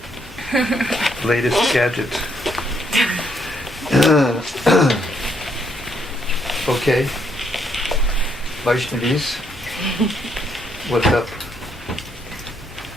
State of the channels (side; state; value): both; normal; correlation 0.73